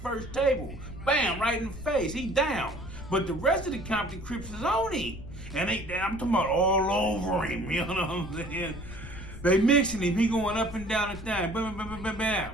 table. Bam, right in the face. He down. But the rest of the Compton Crips is on him. And I'm talking about all over him, you know what I'm saying? They mixing him. He going up and down the thing. Bam, bam, bam, bam,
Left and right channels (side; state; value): left; noise; rumble, 12 dB below the sound